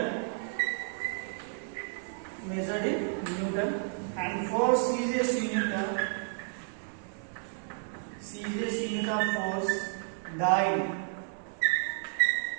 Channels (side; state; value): left; silent; digital silence